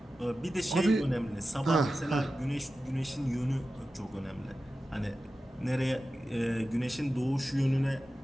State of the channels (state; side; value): normal; both; correlation 0.93